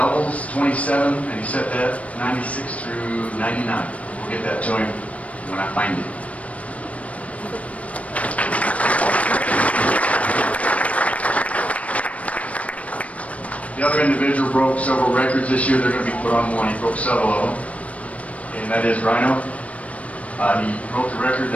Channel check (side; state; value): right; late; 0.066 ms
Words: 27, and he set that 96 through 99. We'll get that to him when I find it. The other individual broke several records this year. They're going to be put on one. He broke several of them, and that is Rhino. He broke the record